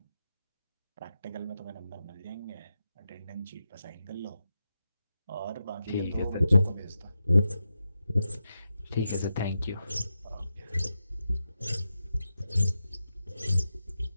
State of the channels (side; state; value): both; inverted; correlation -0.88